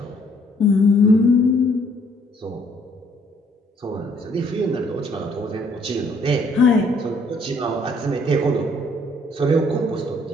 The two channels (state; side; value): normal; both; correlation 0.64